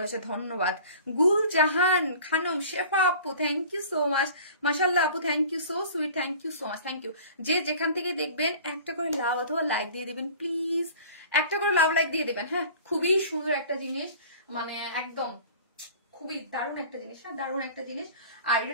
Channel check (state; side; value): inverted; both; correlation -0.44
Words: হয়েছে, ধন্যবাদ। গুলজাহান খানম শেফা আপু, থ্যাংক ইউ সো মাচ। মাশাআল্লাহ আপু, thank you so sweet, thank you so much, thank you. যে যেখান থেকে দেখবেন একটা করে লাভ অথবা লাইক দিয়ে দিবেন প্লিজ, একটা করে লাভ লাইক দিয়ে দিবেন। হ্যাঁ, খুবই সুন্দর একটা জিনিস, মানে একদম খুবই দারুণ একটা জিনিস। হ্যাঁ, দারুণ একটা জিনিস। আর